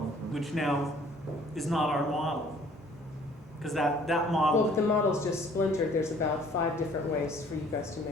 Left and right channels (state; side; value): normal; both; correlation 0.56